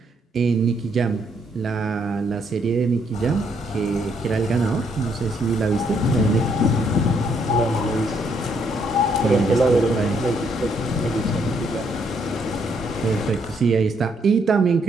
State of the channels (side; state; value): both; normal; correlation 0.72